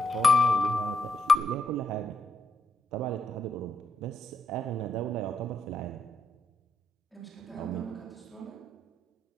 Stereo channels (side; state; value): both; normal; correlation 0.79